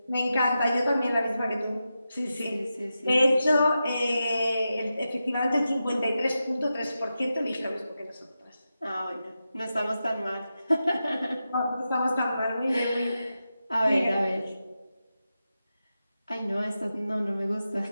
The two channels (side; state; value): both; inverted; correlation -0.90